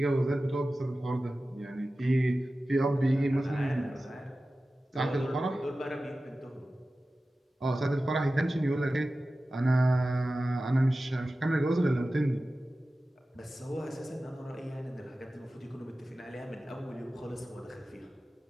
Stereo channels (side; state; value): both; normal; correlation 0.95